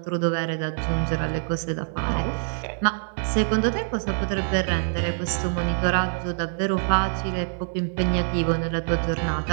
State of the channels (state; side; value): silent; left; digital silence